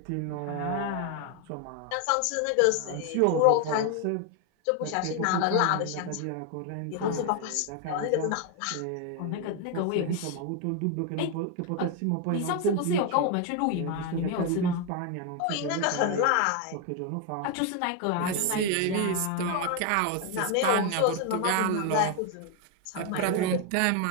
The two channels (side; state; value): both; different; correlation 0.01